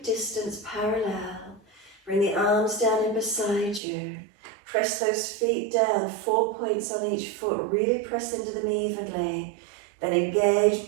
distance parallel. Bring the arms down in beside you. Press those feet down, 4 points on each foot. Really press into them evenly. Then engage,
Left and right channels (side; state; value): left; drops out; at 3.8 s